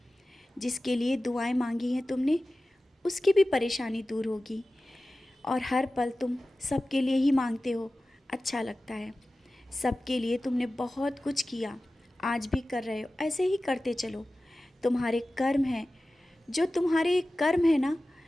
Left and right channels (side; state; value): both; normal; correlation 0.96